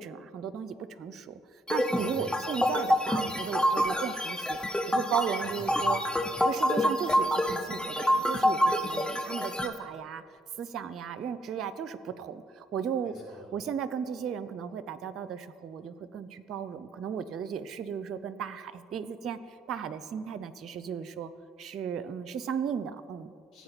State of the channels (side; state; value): both; normal; correlation 0.74